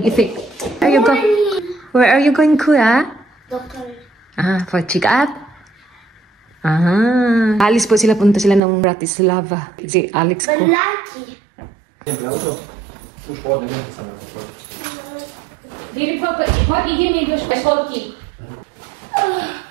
Where are you going, Kuya? Doctor. For check-up? Alis po sila, punta sila ng Bratislava. Si Alex ko. Malaki. Philip, what idzie mi do szkolki?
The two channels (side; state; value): left; drops out; at 8.6 s